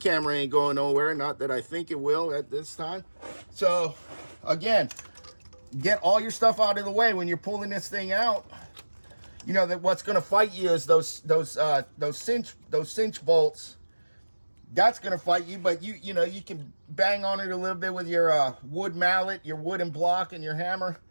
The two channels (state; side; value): inverted; both; correlation -1.00